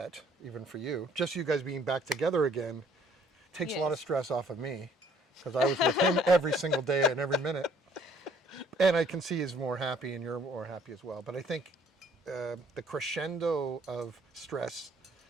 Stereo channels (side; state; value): both; normal; correlation 0.60